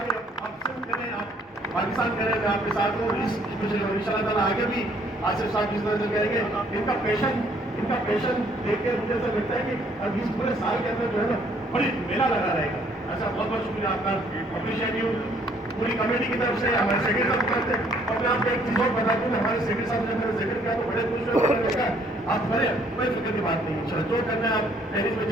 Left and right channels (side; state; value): both; normal; correlation 0.64